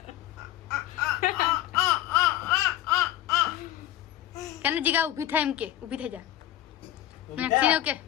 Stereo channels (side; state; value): right; quieter; 13.2 dB